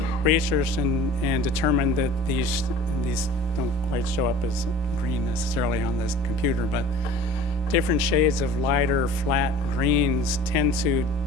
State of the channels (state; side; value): normal; both; correlation 0.43